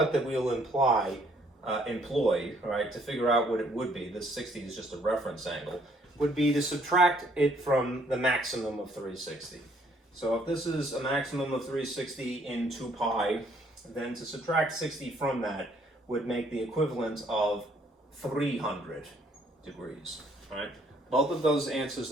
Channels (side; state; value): both; normal; correlation 0.65